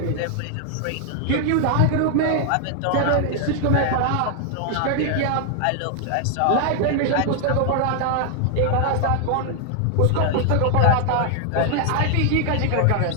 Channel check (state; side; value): different; both; correlation 0.00